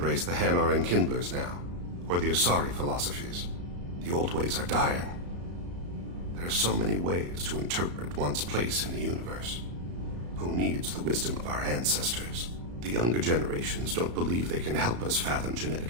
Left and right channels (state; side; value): late; left; 34 ms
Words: the Hanar and Kindlers now, or the Asari philosophies. The old ways are dying. There are so many ways to interpret one's place in the universe. Who needs the wisdom of our ancestors? The younger generations don't believe they can help us fathom